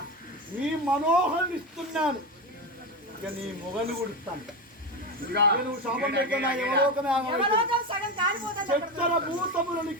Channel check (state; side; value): normal; both; correlation 0.17